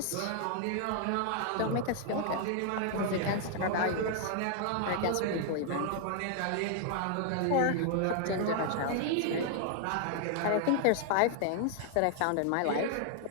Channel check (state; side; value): different; both; correlation 0.00